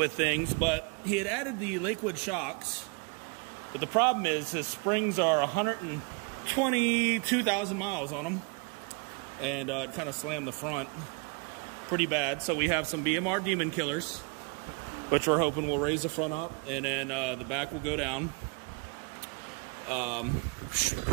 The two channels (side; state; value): left; quieter; 32.8 dB